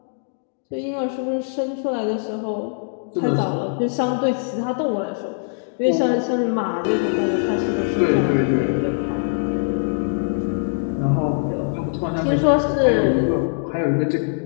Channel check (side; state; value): right; silent; digital silence